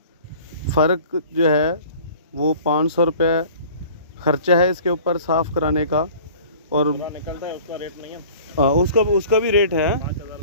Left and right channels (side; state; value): both; inverted; correlation -0.46